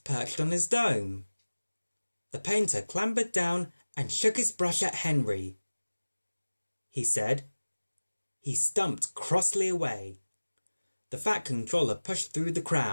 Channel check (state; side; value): inverted; both; correlation -1.00